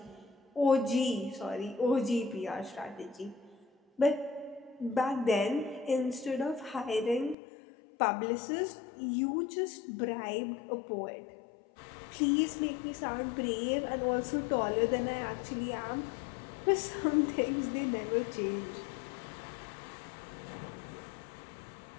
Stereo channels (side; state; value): right; drops out; at 7.4 s